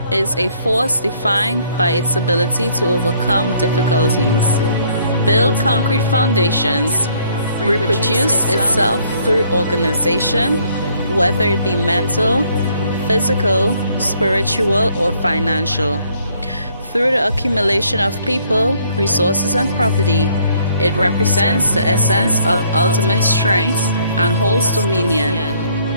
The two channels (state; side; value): inverted; both; correlation -0.64